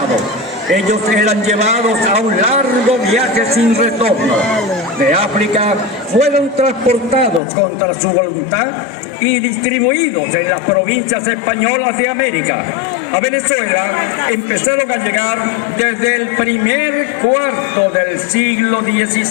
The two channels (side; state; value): right; drops out; at 7.4 s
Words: Ellos eran llevados a un largo viaje sin retorno. De África fueron transportados contra su voluntad y distribuidos en las provincias españolas de América. A Venezuela empezaron a llegar desde el primer cuarto del siglo